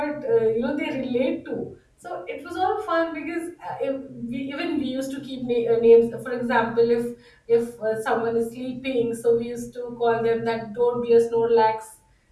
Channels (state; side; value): identical; both; correlation 1.00